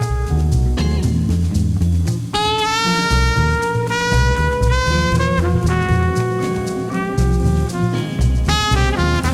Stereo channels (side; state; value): both; identical; correlation 1.00